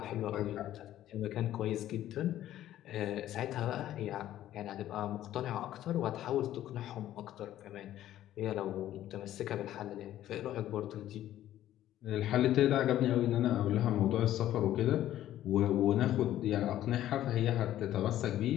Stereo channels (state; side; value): quieter; right; 12.9 dB